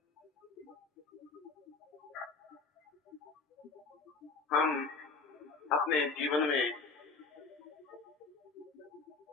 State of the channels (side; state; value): right; quieter; 4.3 dB